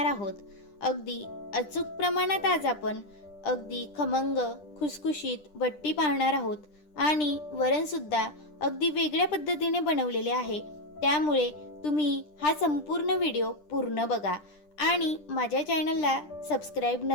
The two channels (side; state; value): right; late; 10 ms